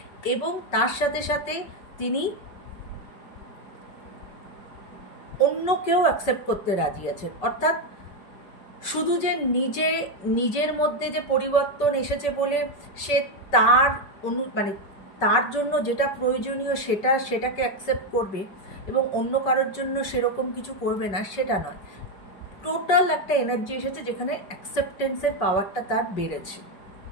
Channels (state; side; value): late; right; 5.3 ms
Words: এবং তার সাথে সাথে তিনি অন্যকেও অ্যাকসেপ্ট করতে রাজি আছেন। অর্থাৎ শুধু যে নিজের মধ্যে যে পরিবর্তন এসেছে বলে সে তার তার জন্য যেটা প্রয়োজনীয় সেটাকে অ্যাকসেপ্ট করবে এবং অন্য কারোর জন্য সেরকম কিছু করবে না, সেটা নয়। টোটাল একটা এনার্জি এসেছে যেখানে অ্যাকসেপ্টেন্সের পাওয়ারটা তার বেড়েছে,